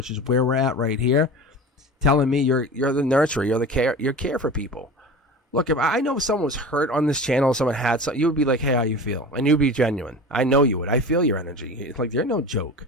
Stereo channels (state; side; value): normal; both; correlation 0.34